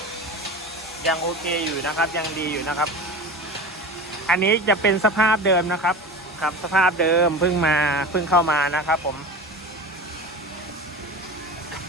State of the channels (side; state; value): both; normal; correlation 0.31